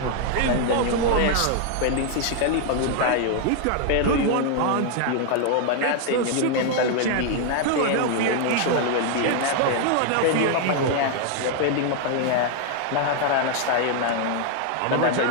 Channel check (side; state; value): both; different; correlation 0.00